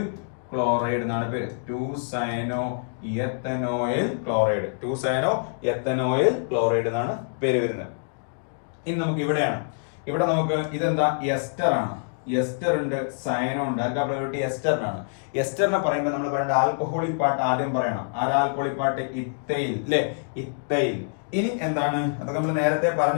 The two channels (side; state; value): right; silent; digital silence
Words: എന്നാണ് പേര്. 2 സയനോ എത്തനോയിൽ ക്ലോറൈഡ് എന്നാണ് പേര് വരുന്നത്. ഇനി നമുക്ക് ഇവിടെ നമുക്ക് ഇതെന്താ? എസ്റ്റർ ആണ്. എസ്റ്റർ ഉണ്ട്, സയനോ ഉണ്ട്. ആർക്കാ പ്രയോറിറ്റി? എസ്റ്ററിനാണ്. എസ്റ്ററിനെ പറയുമ്പോൾ നമ്മൾ പറയേണ്ട ആൽക്കഹോളിക് പാർട്ട് ആദ്യം പറയണം. ആരാ ആൽക്കഹോളിക് പാർട്ട്? ഇത്തൈൽ അല്ലെ, ഇത്തൈൽ. ഇനി എന്താണ്? അതൊക്കെ നമ്മൾ നേരത്തെ